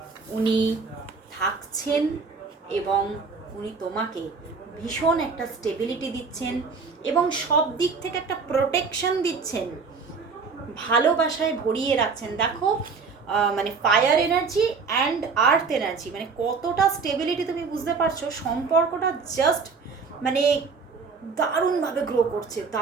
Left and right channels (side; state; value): left; quieter; 4.9 dB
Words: উনি থাকছেন, এবং উনি তোমাকে ভীষণ একটা স্টেবিলিটি দিচ্ছেন, এবং সব দিক থেকে একটা প্রোটেকশন দিচ্ছেন, ভালোবাসায় ভরিয়ে রাখছেন। দেখো মানে fire energy and earth energy, মানে কতটা স্টেবিলিটি তুমি বুঝতে পারছো। সম্পর্কটা জাস্ট মানে দারুণভাবে গ্রো করছে,